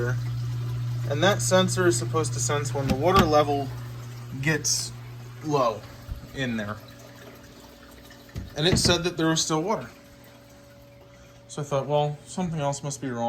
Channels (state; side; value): identical; both; correlation 1.00